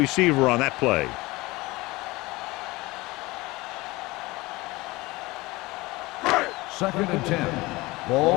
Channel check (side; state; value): right; quieter; 21.4 dB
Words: on that play. Second and 10.